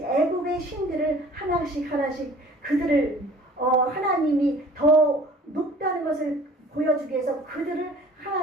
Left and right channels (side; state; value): both; normal; correlation 0.49